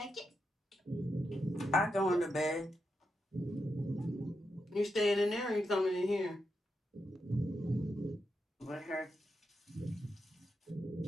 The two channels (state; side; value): normal; both; correlation 0.86